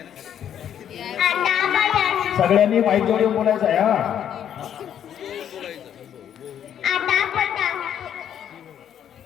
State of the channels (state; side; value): quieter; right; 9.6 dB